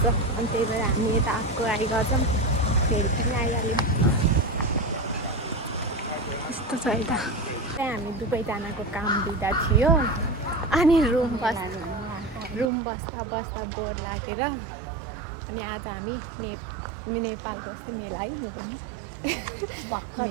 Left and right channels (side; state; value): left; drops out; at 12.7 s